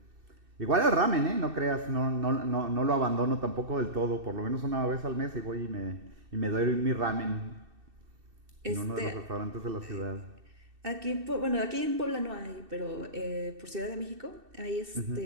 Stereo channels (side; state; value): left; late; 2.7 ms